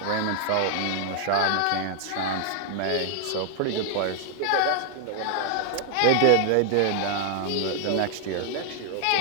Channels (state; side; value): different; both; correlation 0.00